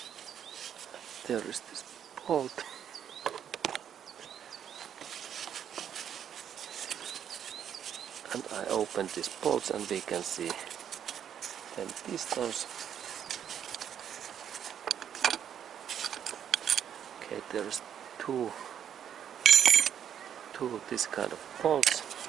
There is this bolt. And I open these bolts, and we can see then pistons. Okay, there's two this kind of bolts.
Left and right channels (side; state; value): left; quieter; 9.0 dB